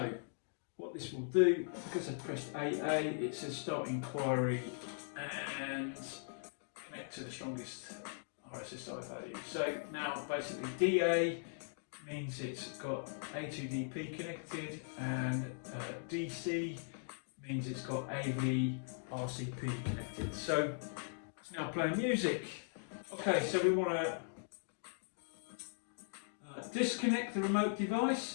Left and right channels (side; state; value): right; silent; digital silence